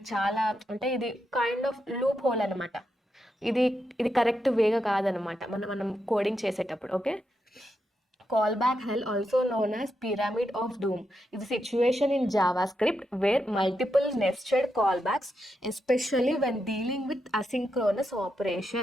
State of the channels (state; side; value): normal; both; correlation 0.84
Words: చాలా అంటే ఇది కైండ్ ఆఫ్ లూప్ హోల్ అనమాట. ఇది కరెక్ట్ వేగా కాదనమాట మనం కోడింగ్ చేసేటప్పుడు. Okay, call back hell also known as pyramid of doom ఇది situation in JavaScript where multiple nested call backs especially when dealing with asynchronous